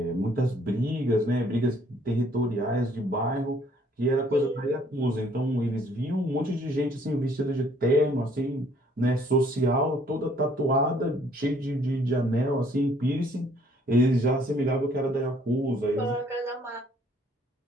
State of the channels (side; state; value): both; normal; correlation 0.61